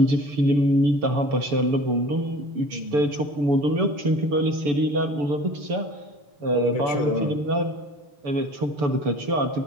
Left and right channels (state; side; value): late; left; 6.9 ms